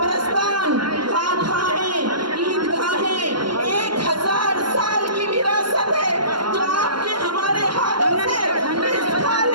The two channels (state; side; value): late; left; 0.72 ms